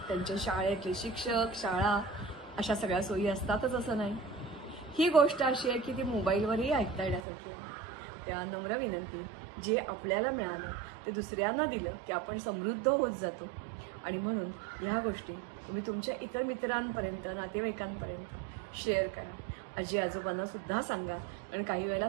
त्यांच्या शाळेतले शिक्षक, शाळा अशा सगळ्या सोयी असतातच असं नाही. ही गोष्ट अशी आहे की ती मोबाईलवरही ऐकता येण्यासारखी आहे. त्या नम्र विनंती, जे आपल्याला मिळालं ते दुसऱ्यांना दिलं की आपण समृद्ध होत जातो. आणि म्हणून ह्या गोष्टी तुम्ही तुमच्या इतर मित्रांपर्यंत, नातेवाईकांपर्यंत शेअर करा. आजी आजोबांना सुद्धा सांगा, कारण काही वेळेला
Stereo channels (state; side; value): drops out; left; at 7.2 s